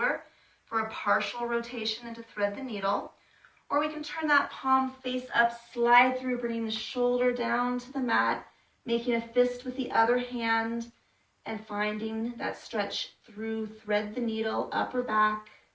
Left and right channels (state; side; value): identical; both; correlation 1.00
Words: for a partial rotation and to thread the needle. Or we can turn that palm face up, slide through, bringing the shoulder down to the mat, making a fist with the other hand, and finding that stretch through, thread the needle, up or back,